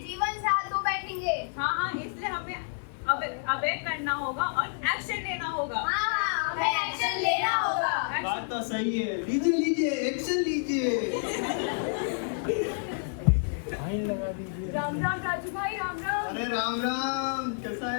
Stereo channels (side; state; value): right; silent; digital silence